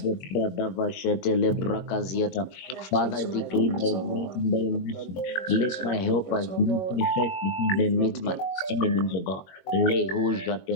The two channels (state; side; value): late; right; 21 ms